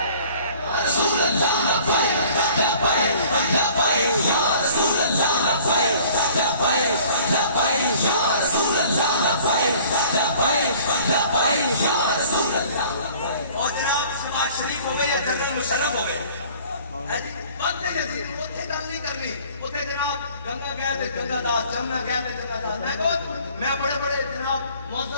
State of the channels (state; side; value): inverted; both; correlation -0.52